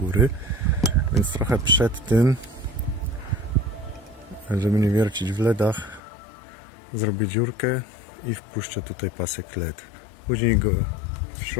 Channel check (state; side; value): drops out; right; at 6.0 s